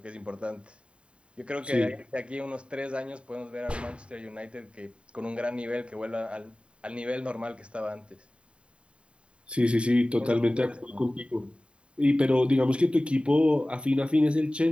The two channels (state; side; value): late; left; 0.057 ms